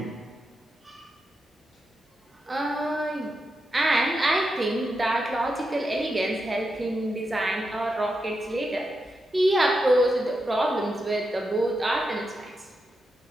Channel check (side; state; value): both; normal; correlation 0.86